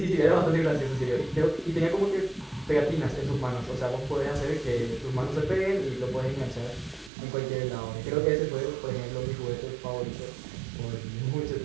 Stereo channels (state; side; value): drops out; left; at 7.1 s